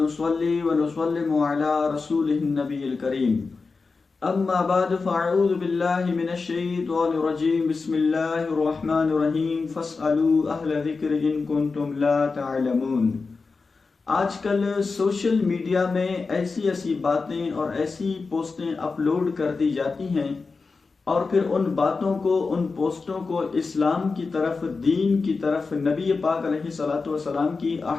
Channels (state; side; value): quieter; right; 4.3 dB